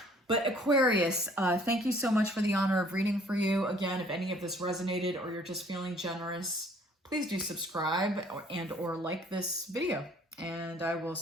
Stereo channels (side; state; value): both; normal; correlation 0.57